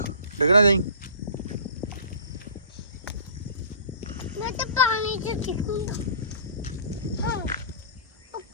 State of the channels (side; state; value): both; inverted; correlation -0.44